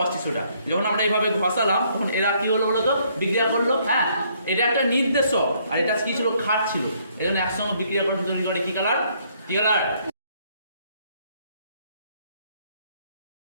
সোডা। যখন আমরা এইভাবে ঘষালাম তখন এরা কি হলো বলতো, বিক্রিয়া করলো। হ্যাঁ, এটা একটা নির্দেশক, আর এটা কি ছিল, ক্ষার ছিল। এই জন্য একসঙ্গে বিক্রিয়া করে তৈরি করে কি কালার, কি কালার।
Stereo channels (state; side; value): inverted; both; correlation -0.67